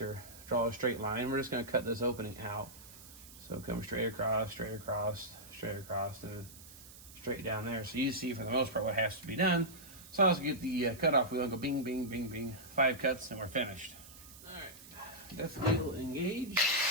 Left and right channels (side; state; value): right; noise; hiss, 18 dB below the sound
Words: or draw a straight line. We're just going to cut this opening out. So come straight across, straight across, straight across, and straight down there. So you see for the most part what has to be done. So let's get the cutoff wheel and go bing, bing, bing, bing. 5 cuts and we're finished. All right, depth wheel engaged.